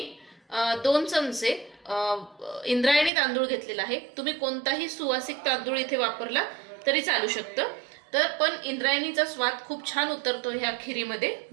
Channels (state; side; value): drops out; left; at 3.1 s